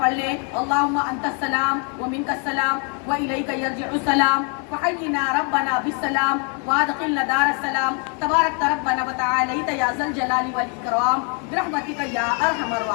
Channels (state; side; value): quieter; right; 37.8 dB